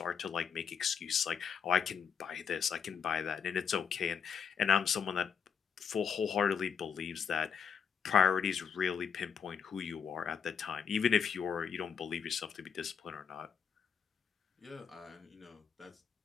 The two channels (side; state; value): right; quieter; 7.0 dB